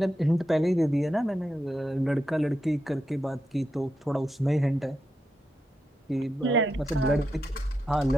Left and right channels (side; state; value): both; normal; correlation 0.86